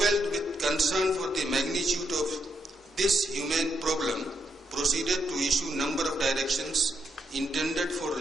with concern for the magnitude of this humane problem, proceeded to issue a number of directions intended for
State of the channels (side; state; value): both; normal; correlation 0.79